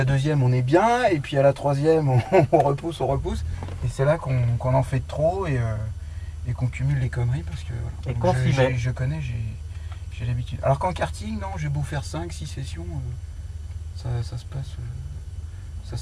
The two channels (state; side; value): identical; both; correlation 1.00